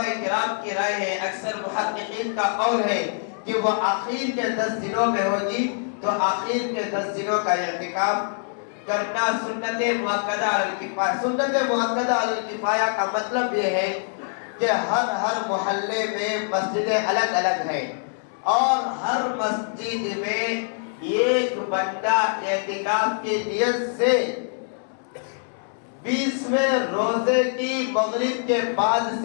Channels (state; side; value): silent; right; 62 dB below the other